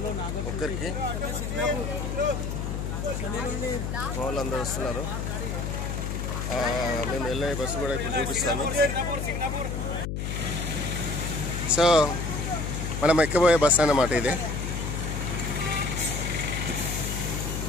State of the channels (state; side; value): noise; left; hum, 3 dB below the sound